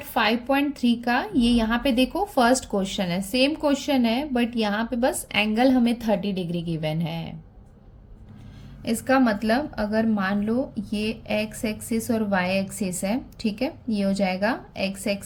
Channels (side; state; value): both; identical; correlation 1.00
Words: 5.3 का, ये यहाँ पे देखो फर्स्ट क्वेश्चन है, सेम क्वेश्चन है बट यहाँ पे बस एंगल हमें 30 डिग्री गिवन है। इसका मतलब अगर मान लो ये एक्स एक्सिस और वाई एक्सिस है, ठीक है, ये हो जाएगा एक्स